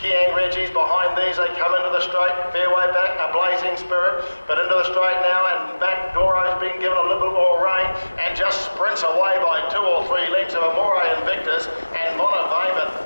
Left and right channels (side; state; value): both; inverted; correlation -1.00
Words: Kiang Reggie's behind these, they come into the straight, fair way back, a Blazing Spirit, but into the straight now, and Mac Doro's been given a little bit more rein and just sprints away by 2 or 3 lengths of Moray Invictus and Monavie,